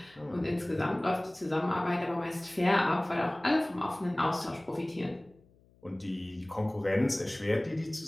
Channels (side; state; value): left; noise; hum, 30 dB below the sound